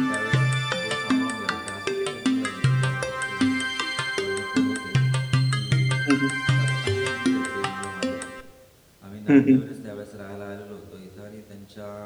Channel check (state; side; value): identical; both; correlation 1.00